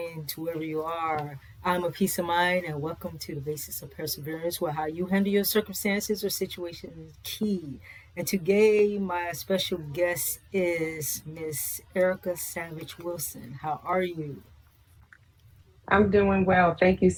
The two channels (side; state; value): both; identical; correlation 1.00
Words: to wherever you are. I'm a peace of mind and welcome to the basics of perseverance, where how you handle your circumstances or situations is key. And today my special guest is Miss Erica Savage Wilson. How are you? I'm doing well. Thank you